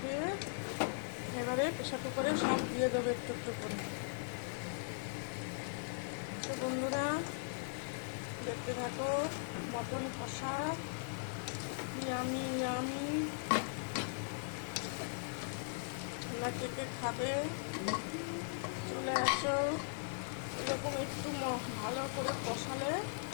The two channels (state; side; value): silent; right; 52 dB below the other